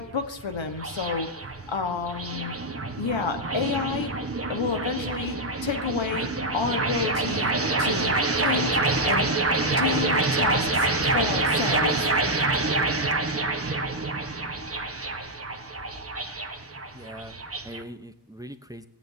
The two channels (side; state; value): both; normal; correlation -0.01